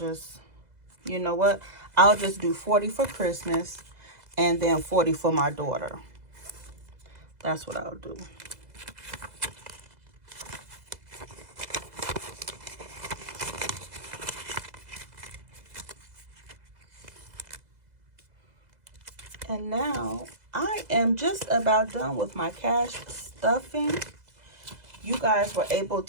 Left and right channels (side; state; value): left; late; 2.0 ms